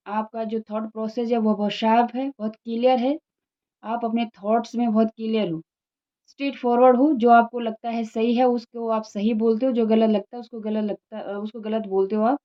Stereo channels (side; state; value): both; identical; correlation 1.00